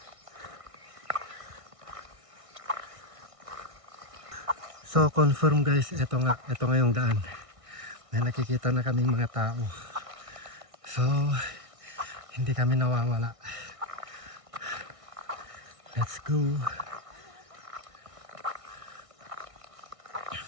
So confirm guys, ito nga yung daan. May nakikita na kaming mga tao. So hindi kami nawawala. Let's go.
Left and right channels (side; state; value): left; late; 1.6 ms